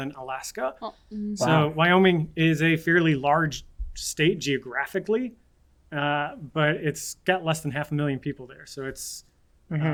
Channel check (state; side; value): identical; both; correlation 1.00